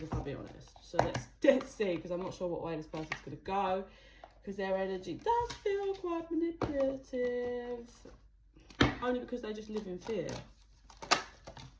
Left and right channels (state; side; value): identical; both; correlation 1.00